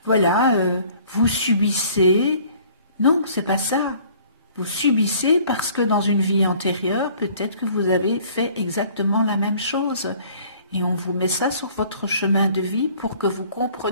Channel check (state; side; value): inverted; both; correlation -0.54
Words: vous subissez. » Non, c'est pas ça. Vous subissez parce que dans une vie antérieure, peut-être que vous avez fait exactement la même chose. Et on vous met ça sur votre chemin de vie pour que vous